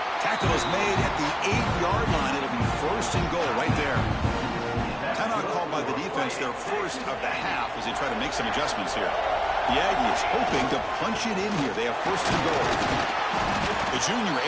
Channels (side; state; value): both; identical; correlation 1.00